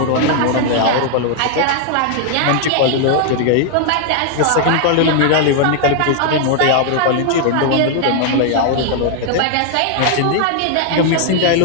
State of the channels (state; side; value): different; both; correlation 0.00